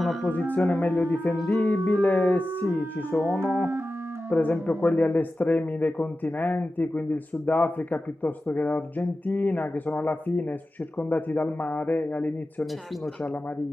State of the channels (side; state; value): both; normal; correlation 0.94